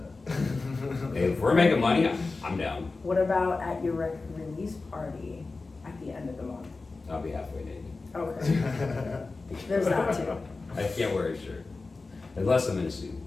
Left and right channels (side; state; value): right; quieter; 3.8 dB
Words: Hey, if we're making money, I'm down. What about at your record release party at the end of the month? I'll be halfway naked. Okay. There's that too. I can't wear a shirt. Unless I'm in a suit.